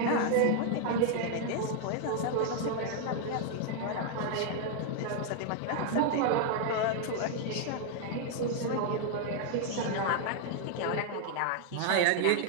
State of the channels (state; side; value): different; both; correlation 0.00